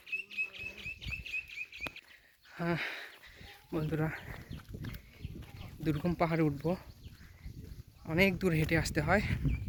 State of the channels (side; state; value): both; identical; correlation 1.00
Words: হ্যাঁ বন্ধুরা দুর্গম পাহাড়ে উঠবো অনেক দূর হেঁটে আসতে হয়